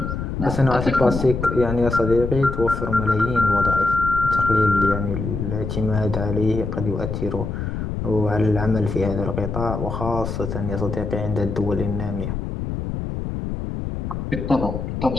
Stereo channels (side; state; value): left; noise; rumble, 4 dB below the sound